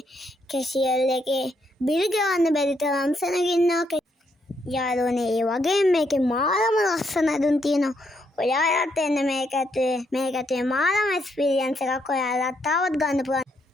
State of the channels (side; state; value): both; normal; correlation 0.76